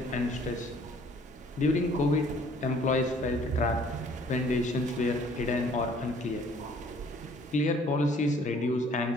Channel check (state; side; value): normal; both; correlation 0.57